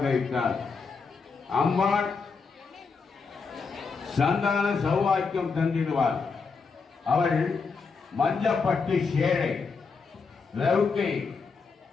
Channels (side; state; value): right; quieter; 4.9 dB